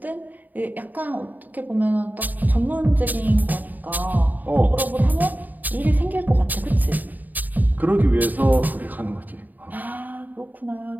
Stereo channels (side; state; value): left; late; 0.084 ms